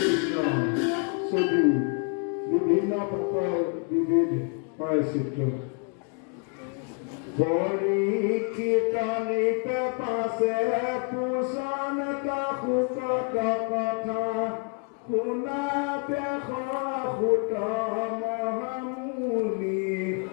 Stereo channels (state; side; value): quieter; right; 36.9 dB